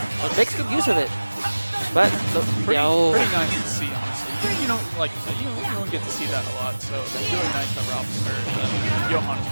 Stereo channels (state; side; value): inverted; both; correlation -1.00